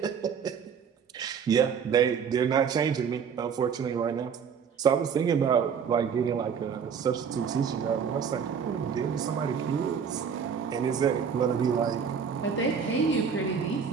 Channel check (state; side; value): quieter; left; 6.8 dB